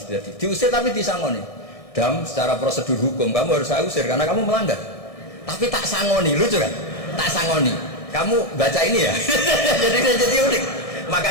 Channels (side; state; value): right; late; 1.6 ms